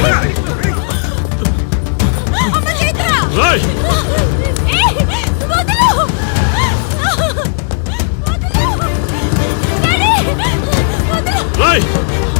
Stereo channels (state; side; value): silent; right; digital silence